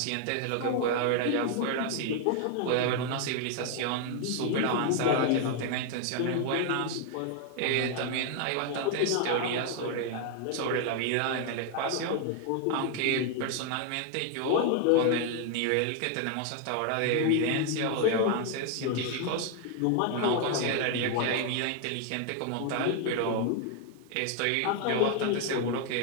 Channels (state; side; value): different; both; correlation 0.00